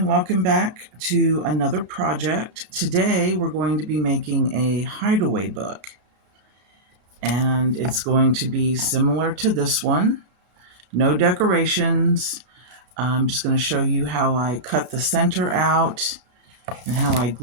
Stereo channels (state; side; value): late; left; 33 ms